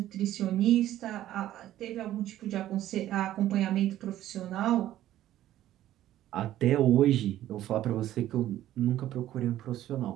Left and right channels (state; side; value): quieter; left; 13.2 dB